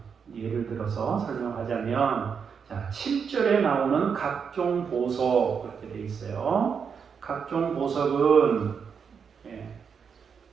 들어서 설명하자면, 자, 7절에 나오는 각종 보석, 그렇게 되어 있어요. 각종 보석은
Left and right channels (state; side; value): quieter; left; 6.5 dB